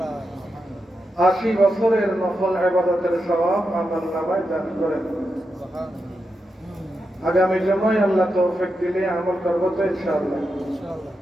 80 বছরের নফল ইবাদতের সওয়াব আমলনামায় দান করেন। আগামী জুমায় আল্লাহ তৌফিক দিলে আমল করব তো ইনশাআল্লাহ।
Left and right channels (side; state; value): both; normal; correlation 0.87